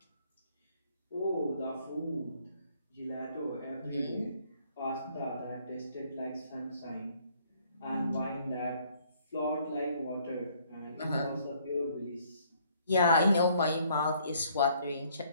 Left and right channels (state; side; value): inverted; both; correlation -0.64